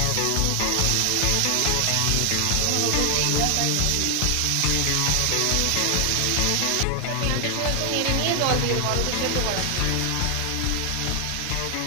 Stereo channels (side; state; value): both; different; correlation 0.00